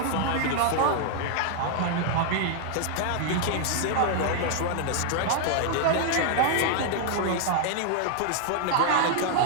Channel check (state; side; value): different; both; correlation 0.00